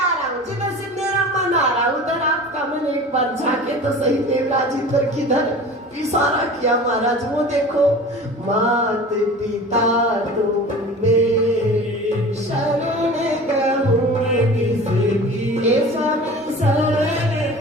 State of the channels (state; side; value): normal; both; correlation 0.39